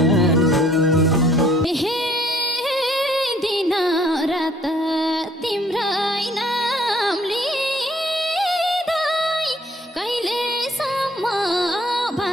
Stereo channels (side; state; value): both; normal; correlation 0.61